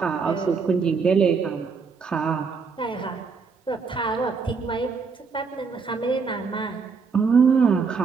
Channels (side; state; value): left; quieter; 5.2 dB